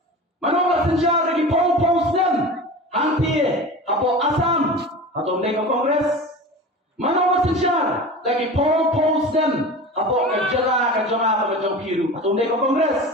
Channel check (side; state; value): both; normal; correlation 0.33